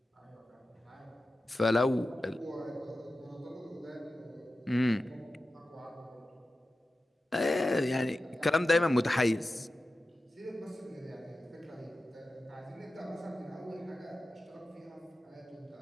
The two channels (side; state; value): both; normal; correlation 0.93